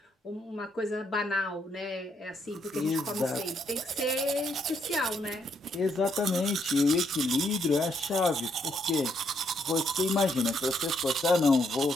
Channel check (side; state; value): both; normal; correlation 0.74